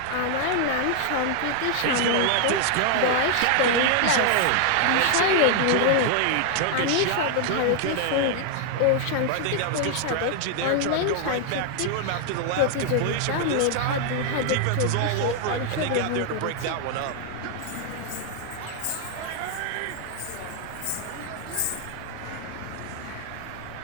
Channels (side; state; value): both; different; correlation 0.00